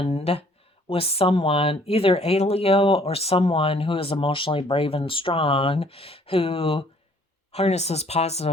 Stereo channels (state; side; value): normal; both; correlation 0.60